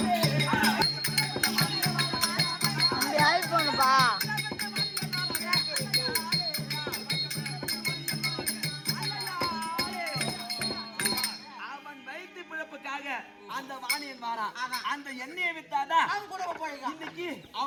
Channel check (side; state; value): both; identical; correlation 1.00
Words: அப்படி ஆயிப்போனுப்பா. அவன் வயிற்று பிழப்புக்காக அந்த வாணியன் வாரான். அந்த எண்ணெயை வித்தாதான் அவங்க குடும்பம் பழைக்கும். இன்னைக்கு